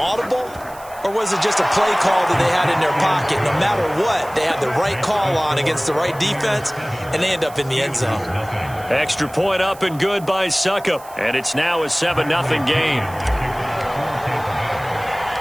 Or was it just a play call that they had in their pocket? No matter what, they had the right call on against the right defense, and they end up in the end zone. Extra point up and good by Succop. And it's now a 7-0 game.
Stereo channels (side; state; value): right; noise; hiss, 21 dB below the sound